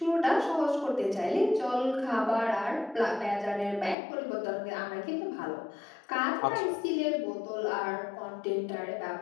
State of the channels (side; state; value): right; drops out; at 4.0 s